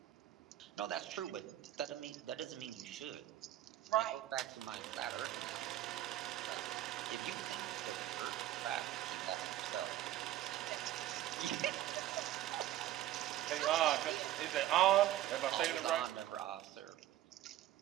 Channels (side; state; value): left; quieter; 13.7 dB